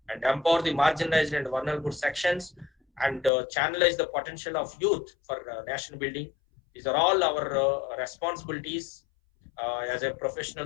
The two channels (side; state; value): right; drops out; at 3.3 s